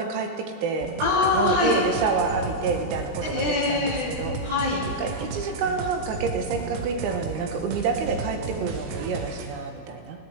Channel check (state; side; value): late; left; 19 ms